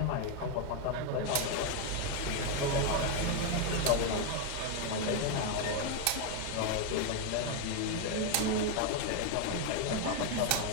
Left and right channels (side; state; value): both; different; correlation 0.01